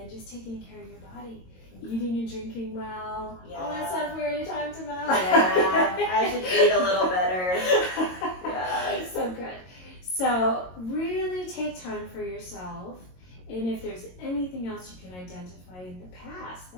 just taking care of your body. Eating and drinking well. All that stuff we already talked about. Yeah, I should eat a little better. Yeah. So good. So really take time for yourself. And if there's anything else you can identify in the past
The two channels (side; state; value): right; late; 22 ms